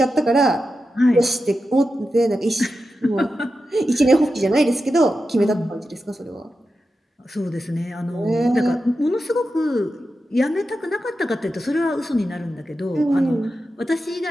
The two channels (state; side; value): normal; both; correlation 0.90